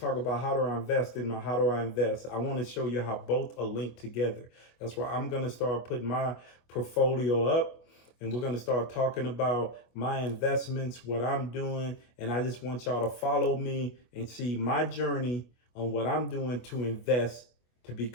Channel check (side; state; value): right; late; 24 ms